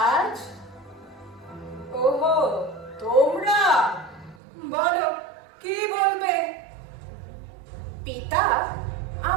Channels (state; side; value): drops out; left; at 4.4 s